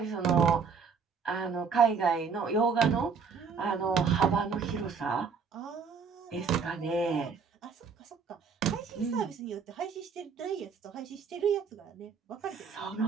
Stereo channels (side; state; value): left; quieter; 5.8 dB